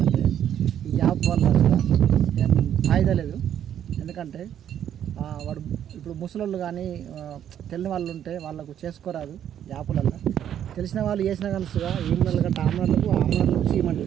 ఈ యాప్ వల్ల ఏం ఫాయిదా లేదు. ఎందుకంటే వాడు ఇప్పుడు ముసలోళ్ళు కానీ తెలియని వాళ్ళు ఉంటే వాళ్ళకు చేసుకోరాదు యాప్లల్లో. తెలిసిన వాళ్ళు చేసినా కలుసుగా ఈమెన్ల కంటే ఆమ్రాలకు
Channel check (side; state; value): left; quieter; 10.0 dB